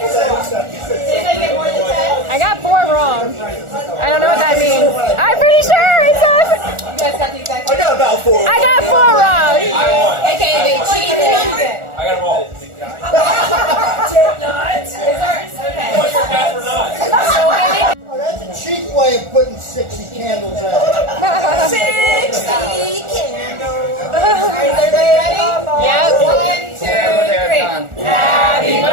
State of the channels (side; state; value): left; late; 1.4 ms